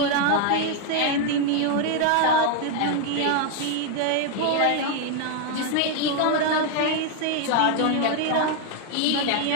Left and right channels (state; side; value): different; both; correlation 0.01